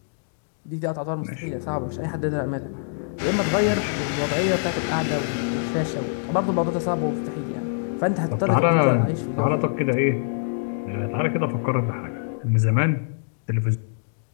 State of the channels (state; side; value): silent; right; digital silence